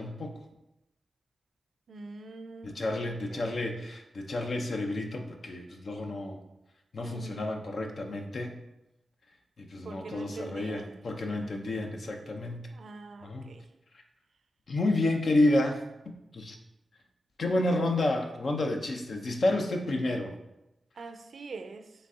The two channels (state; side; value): normal; both; correlation 0.88